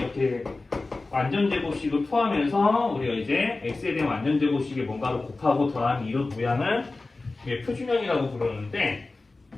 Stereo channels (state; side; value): quieter; right; 3.4 dB